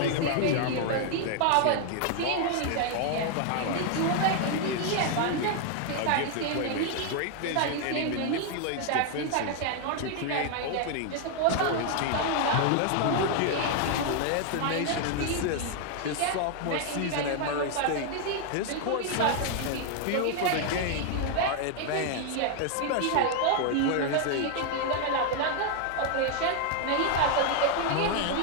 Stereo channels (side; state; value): both; different; correlation 0.00